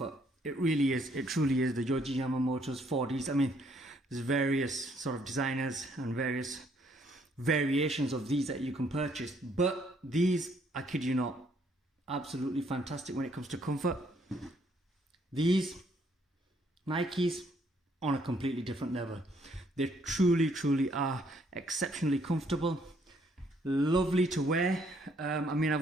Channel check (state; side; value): normal; both; correlation 0.68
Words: It really is. It truly is. The Yohji Yamamoto's 4Ds. I mean, there's various sort of designers and various variations of these that you can purchase. But these, I kid you not, absolutely fantastic when it comes to comfort. These Nikes on a completely different level. They truly are exceptionally comfortable, lovely to wear. I mean,